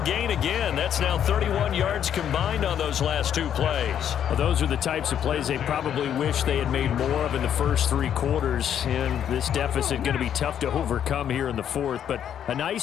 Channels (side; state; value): right; quieter; 9.4 dB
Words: gain again. That's now 31 yards combined on those last two plays. Well, those are the types of plays they probably wish they had made more of in the first 3 quarters. And this deficit going to be tough to overcome here in the 4th. But a